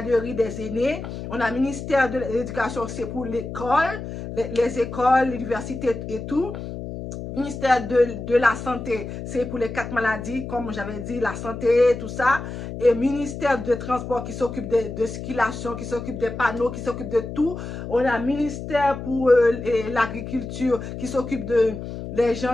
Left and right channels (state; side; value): noise; left; hum, 8 dB below the sound